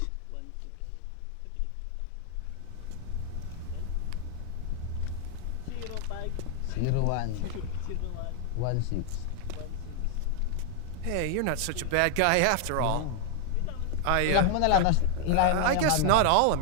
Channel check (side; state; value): both; different; correlation 0.00